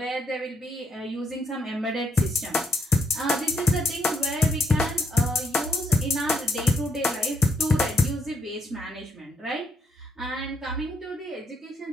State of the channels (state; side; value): normal; both; correlation 0.75